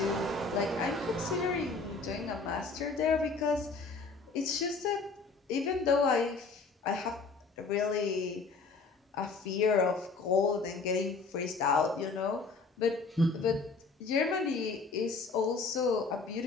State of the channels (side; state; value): right; quieter; 4.2 dB